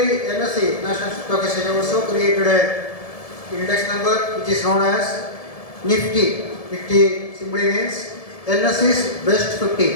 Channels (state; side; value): late; right; 1.7 ms